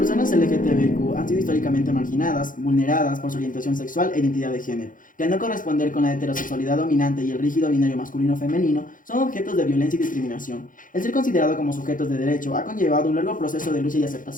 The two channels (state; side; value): late; right; 0.39 ms